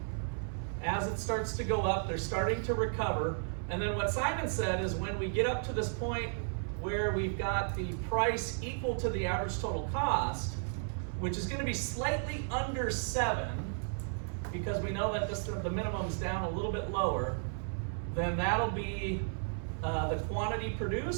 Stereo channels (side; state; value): left; silent; 55 dB below the other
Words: As it starts to go up, they're starting to recover. And then what Simon said is when we get up to this point where we've got the price equal to the average total cost, which is going to be slightly under 7, because we know that the minimum's down a little bit lower, then that'll be the quantity